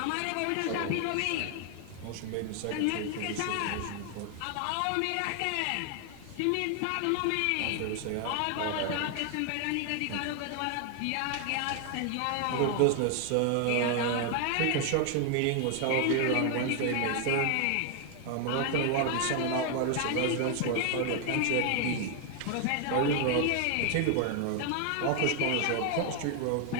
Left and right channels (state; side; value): different; both; correlation 0.00